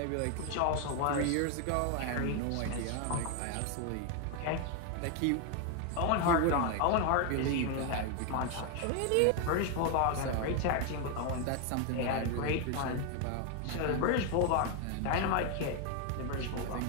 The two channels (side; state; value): both; different; correlation 0.01